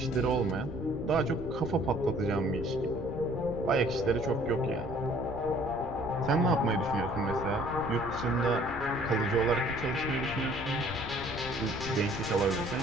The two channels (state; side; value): noise; left; rumble, 11 dB below the sound